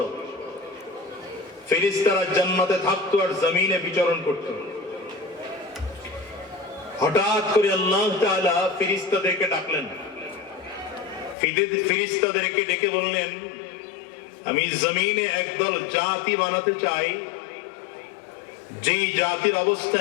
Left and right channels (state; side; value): drops out; right; at 11.4 s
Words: ফেরেশতারা জান্নাতে থাকতো আর জমিনে বিচরণ করতো। হঠাৎ করে আল্লাহ তাআলা ফেরেশতাদেরকে ডাকলেন। ফেরেশতাদেরকে ডেকে বললেন, আমি জমিনে একদল জাতি বানাতে চাই, যেই জাতির অবস্থা